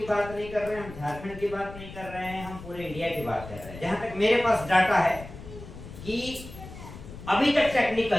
बात नहीं कर रहे हैं, हम झारखंड की बात नहीं कर रहे हैं, हम पूरे इंडिया की बात कर रहे हैं। जहां तक मेरे पास डाटा है कि अभी तक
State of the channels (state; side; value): noise; left; rumble, 14 dB below the sound